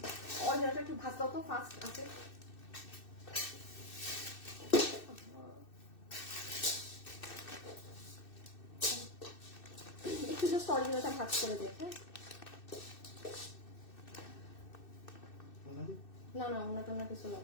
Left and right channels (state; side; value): late; right; 2.6 ms